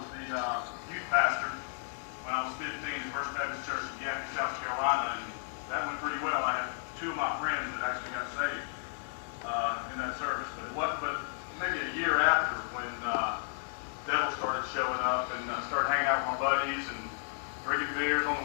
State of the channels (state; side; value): silent; right; digital silence